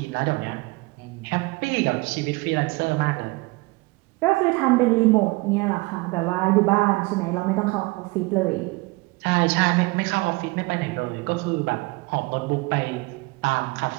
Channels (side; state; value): left; quieter; 24.5 dB